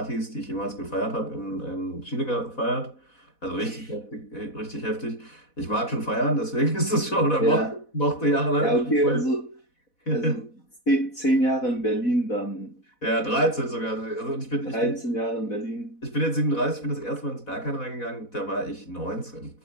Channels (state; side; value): late; right; 4.1 ms